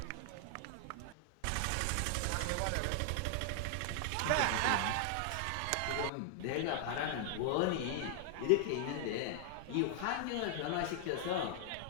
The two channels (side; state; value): both; different; correlation 0.00